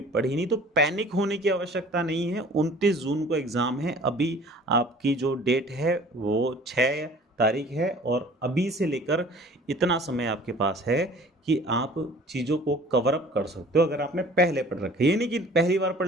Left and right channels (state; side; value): normal; both; correlation 0.49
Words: पढ़ी नहीं, तो पैनिक होने की आवश्यकता नहीं है। 29 जून को एग्जाम है, अभी आपकी जो डेट है वो 6 तारीख है और अभी से लेकर इतना समय आपके पास है कि आप चीज़ों को कवर अप कर सकते हो अगर आपने पहले पढ़ रखा है। ये नहीं कि पहली बार